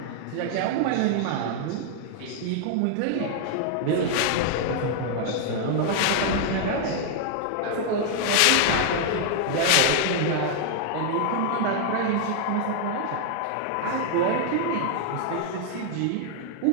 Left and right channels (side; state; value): both; different; correlation 0.00